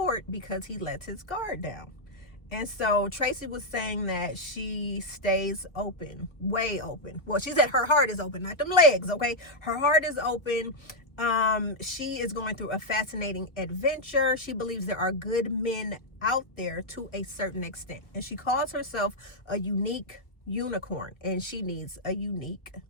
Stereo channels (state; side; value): late; right; 1.1 ms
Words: because he lets his guard down. And so Tracee was saying that she stays open, way open. Well, she said her heart is open, not them legs, okay? Her heart is open. She is going through a fascinating adventure. She believes there are good men out there to a certain extent. And she calls herself a unique unicorn. And she needs a unique,